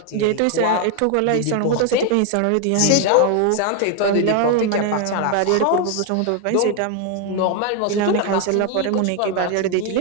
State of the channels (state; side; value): different; both; correlation 0.01